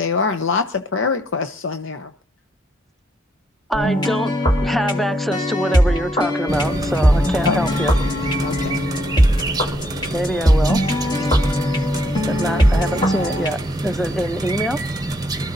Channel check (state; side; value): normal; both; correlation 0.74